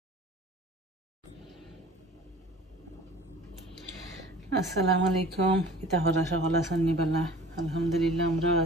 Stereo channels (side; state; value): both; normal; correlation 0.44